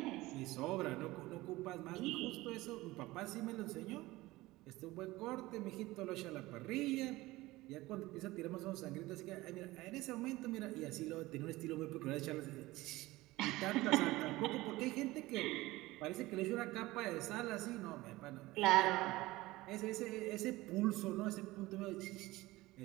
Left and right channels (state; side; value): quieter; left; 19.2 dB